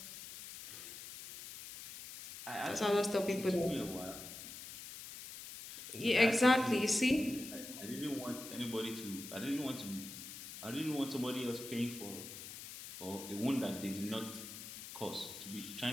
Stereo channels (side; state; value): left; noise; hiss, 11 dB below the sound